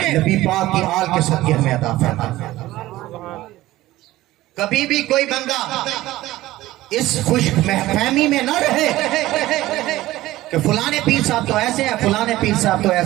نبی پاک کی آل کے صدقے ہمیں عطا فرماتا ہے۔ کبھی بھی کوئی بندہ اس خوش فہمی میں نہ رہے کہ فلانے پیر صاحب تو ایسے ہیں، فلانے پیر صاحب تو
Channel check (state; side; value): quieter; left; 16.6 dB